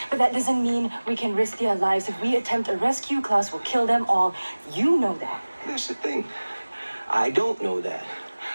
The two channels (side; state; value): both; inverted; correlation -1.00